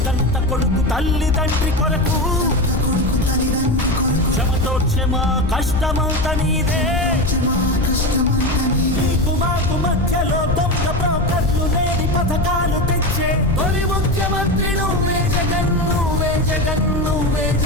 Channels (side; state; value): left; noise; rumble, 4 dB below the sound